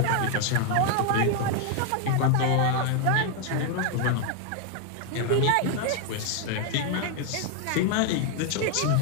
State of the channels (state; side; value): different; both; correlation 0.01